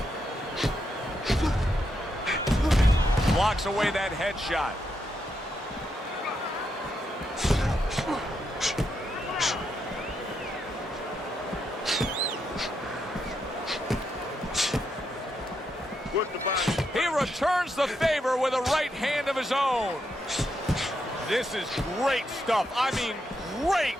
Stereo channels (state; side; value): normal; both; correlation 0.81